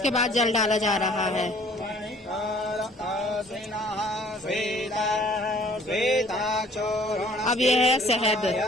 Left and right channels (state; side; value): normal; both; correlation 0.55